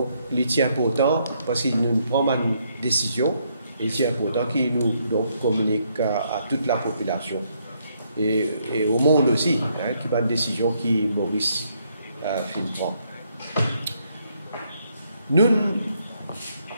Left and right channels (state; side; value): inverted; both; correlation -0.73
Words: il est important, parce qu'il nous prend une décision, il est important qu'il nous donc, communique à toute la population. Et au monde aussi, qui prend une décision qui Maurice prend. Nous